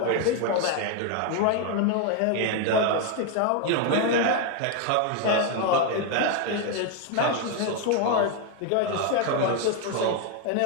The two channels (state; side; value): different; both; correlation 0.01